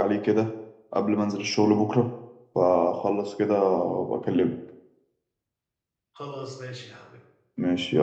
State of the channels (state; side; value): identical; both; correlation 1.00